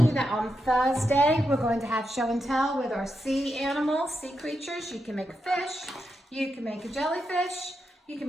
you that on Thursday, we're going to have show and tell with our sea animals, sea creatures. You can make a fish, you can make a jellyfish, you can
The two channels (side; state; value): both; normal; correlation 0.85